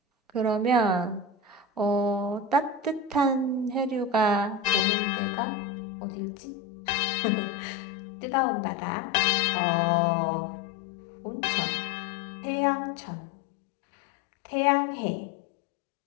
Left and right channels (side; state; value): right; drops out; at 4.9 s